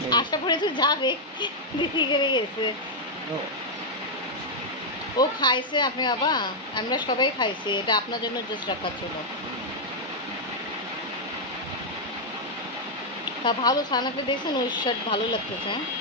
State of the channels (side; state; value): both; normal; correlation -0.03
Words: আসার পরে তো যাবে, দেরি করে গেছে। ও খাইছে আপনি বাবা, আমরা সবাই খাইছি। এটা আপনার জন্য জাস্ট রাখা ছিল। তা ভালো, সানাকে দেখছেন ওই শার্ট ভালো লাগতেছে।